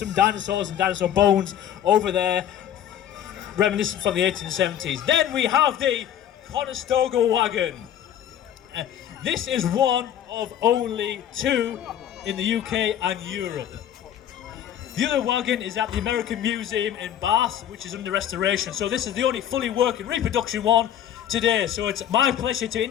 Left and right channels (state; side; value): quieter; right; 10.3 dB